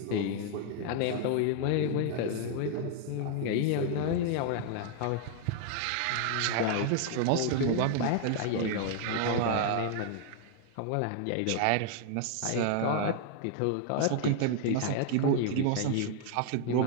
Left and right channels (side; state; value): both; different; correlation 0.00